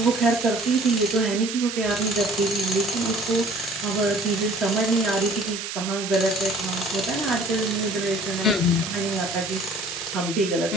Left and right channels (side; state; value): right; noise; hiss, 6 dB below the sound